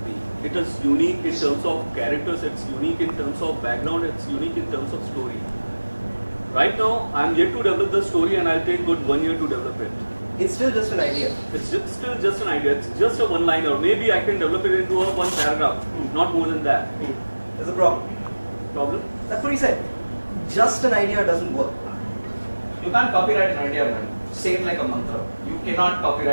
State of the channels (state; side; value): inverted; both; correlation -1.00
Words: me. It is unique in terms of characters, it's unique in terms of background, it's unique in terms of story. Right now, I'm yet to develop the story and I'll take good 1 year to develop it. It's still just an idea. It's still just an idea, it's just a one-liner. Maybe I can develop it into a one paragraph, not more than that. There's a problem. Problem? That's what he said. Just an idea doesn't work. You can't copyright an idea, man. Say it like a mantra. You cannot